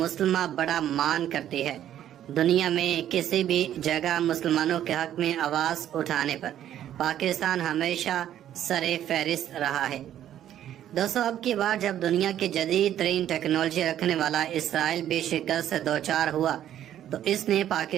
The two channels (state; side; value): quieter; left; 11.2 dB